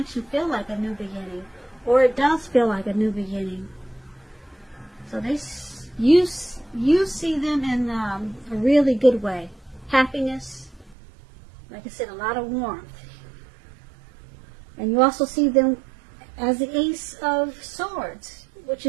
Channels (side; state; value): left; drops out; at 11.0 s